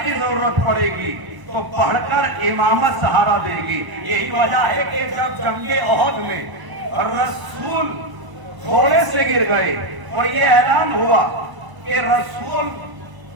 की जरूरत पड़ेगी तो पढ़कर इमामत सहारा देगी। यही वजह है कि जब जंगे ओहद में रसूल घोड़े से गिर गए और ये ऐलान हुआ कि रसूल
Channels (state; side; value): late; left; 1.0 ms